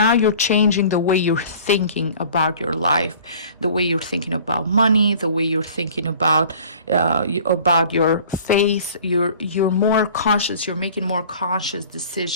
you're changing the way you're thinking about your life, the way you're thinking about money, the way you're thinking about your faith. You're more conscious, you're making more conscious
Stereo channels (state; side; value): inverted; both; correlation -0.47